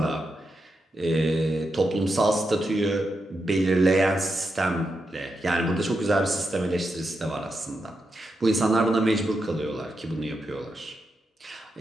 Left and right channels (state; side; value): normal; both; correlation 0.86